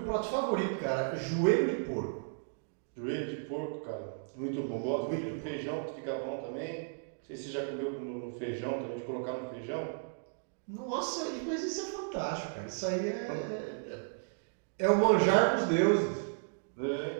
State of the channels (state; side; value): silent; left; digital silence